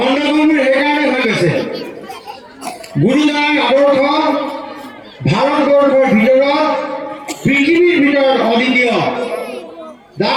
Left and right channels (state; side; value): identical; both; correlation 1.00